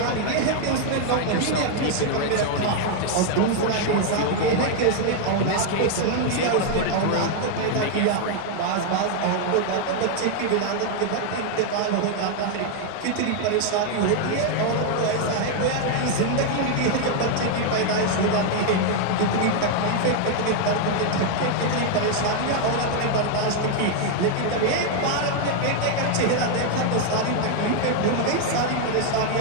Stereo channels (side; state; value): both; different; correlation 0.00